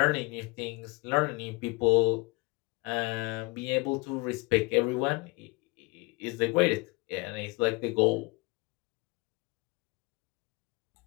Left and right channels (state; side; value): quieter; right; 27.0 dB